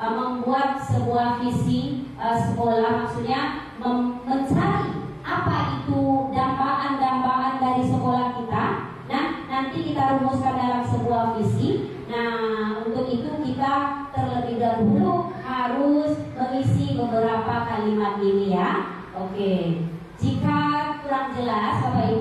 sebuah visi sekolah, maksudnya mencari apa itu dambaan-dambaan dari sekolah kita. Nah, nanti kita rumuskan dalam sebuah visi. Nah, untuk itu kita terlebih dahulu harus mengisi beberapa kalimat ini ya. Oke. Jika kurang jelas Bapak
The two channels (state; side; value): identical; both; correlation 1.00